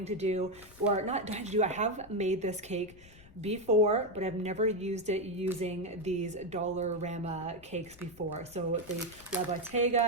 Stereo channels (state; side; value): noise; left; rumble, 22 dB below the sound